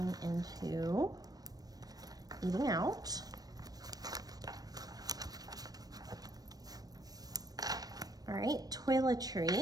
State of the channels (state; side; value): late; left; 0.19 ms